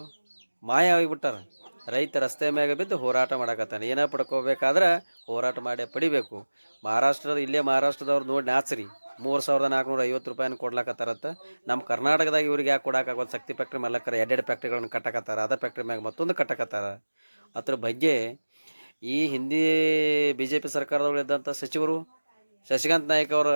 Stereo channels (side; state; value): both; inverted; correlation -1.00